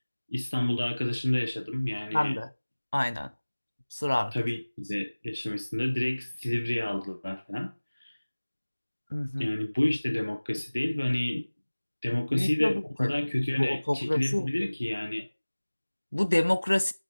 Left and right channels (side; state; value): both; inverted; correlation -1.00